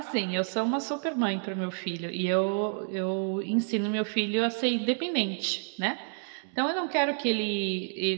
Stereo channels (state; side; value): silent; left; 58 dB below the other